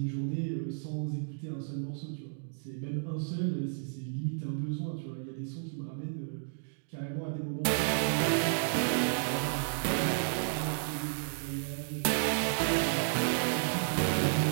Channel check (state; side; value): silent; left; digital silence